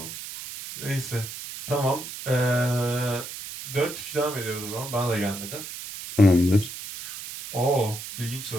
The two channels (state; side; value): noise; right; hiss, 10 dB below the sound